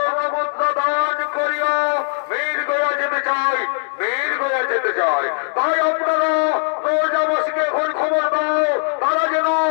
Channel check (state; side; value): silent; right; digital silence